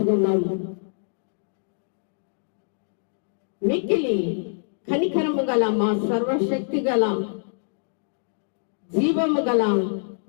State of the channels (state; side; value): silent; right; digital silence